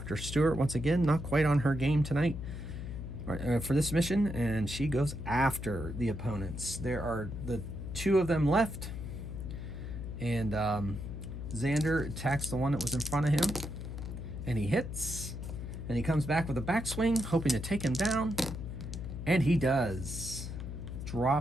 Stewart, once again, not quite on her game tonight for this mission, and she goes after the opponents. There are the two of them left, and Xander attacks the one that was in front of him, and he hits, and he comes back with a backswing, hoping to take him down, and he does.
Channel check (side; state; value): left; noise; hum, 7 dB below the sound